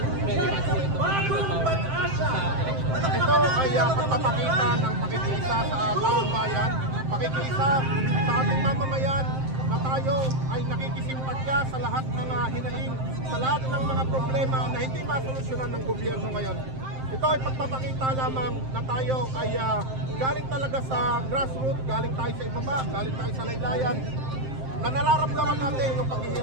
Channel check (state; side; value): late; left; 7.6 ms